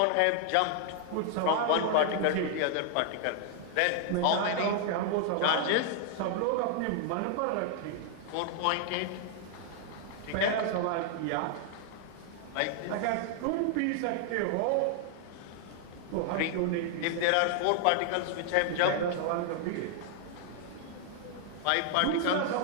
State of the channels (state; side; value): different; both; correlation 0.00